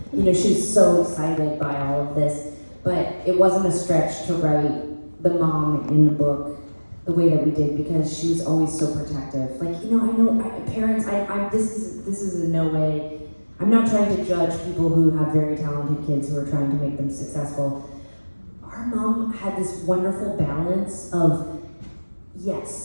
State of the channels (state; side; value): inverted; both; correlation -1.00